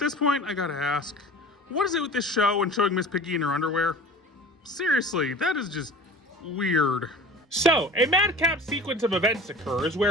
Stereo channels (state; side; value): normal; both; correlation 0.40